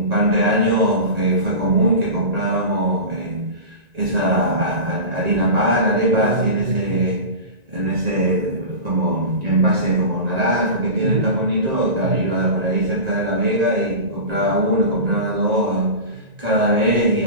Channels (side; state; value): left; late; 1.9 ms